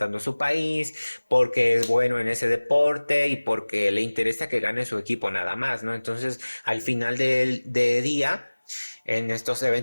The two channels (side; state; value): both; inverted; correlation -1.00